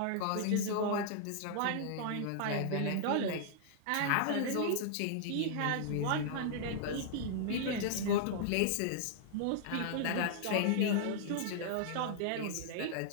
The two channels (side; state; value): both; different; correlation -0.01